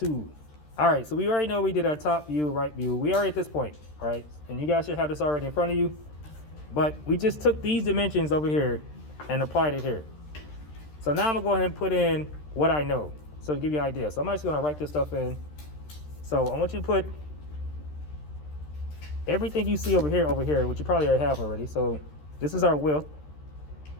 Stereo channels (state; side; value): late; right; 13 ms